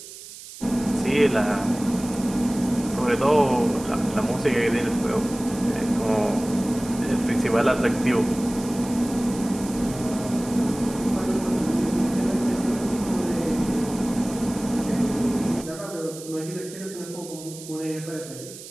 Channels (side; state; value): right; noise; hiss, 15 dB below the sound